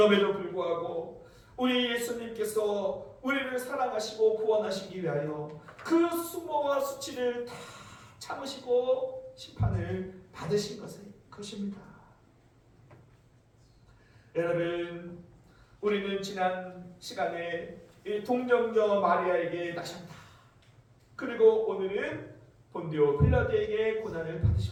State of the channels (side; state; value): both; identical; correlation 1.00